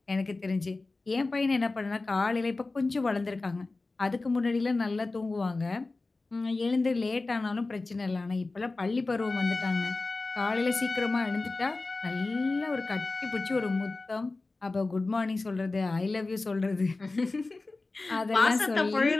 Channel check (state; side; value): quieter; right; 3.4 dB